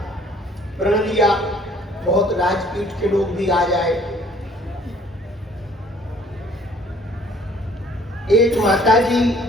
प्रण लिया। बहुत राजपीठ के लोग भी आ जाए। एक माता जी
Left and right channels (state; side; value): normal; both; correlation 0.57